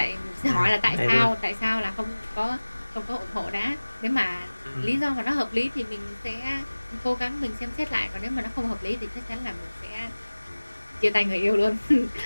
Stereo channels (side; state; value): both; inverted; correlation -1.00